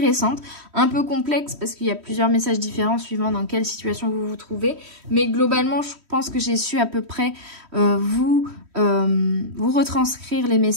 un peu complexe parce qu'il y a plusieurs messages différents suivant dans quelle situation vous vous trouvez. Mais globalement, je pense que j'ai su à peu près vous retranscrire les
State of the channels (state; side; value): late; left; 3.1 ms